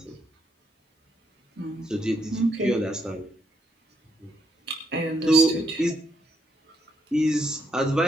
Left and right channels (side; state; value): both; normal; correlation 0.75